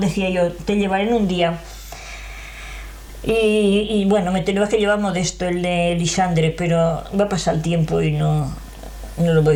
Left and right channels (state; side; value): identical; both; correlation 1.00